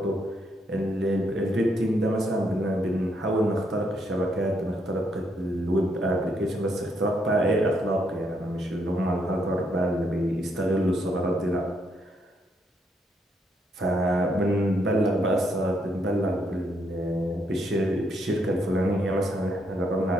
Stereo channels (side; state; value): both; normal; correlation 0.75